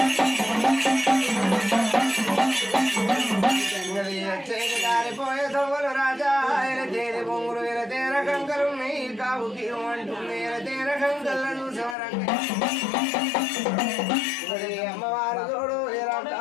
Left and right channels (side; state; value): right; drops out; at 12.0 s